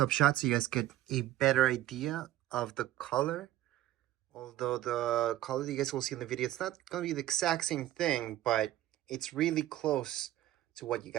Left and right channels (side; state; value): left; quieter; 14.2 dB